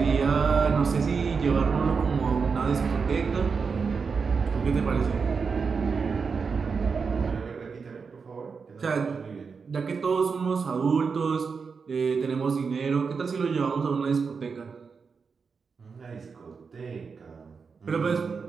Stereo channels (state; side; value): quieter; left; 5.3 dB